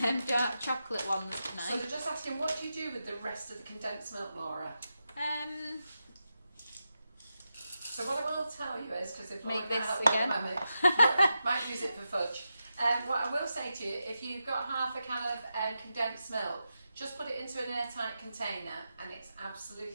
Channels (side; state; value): both; inverted; correlation -0.88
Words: dark chocolate ones tonight. So they're just asking, what do you do with the rest of the condensed milk, Laura? So what I will tell you is, because if make this again, might use it for fudge. What I will say to you, if you've got half a can of condensed milk, just put it into an airtight container and it's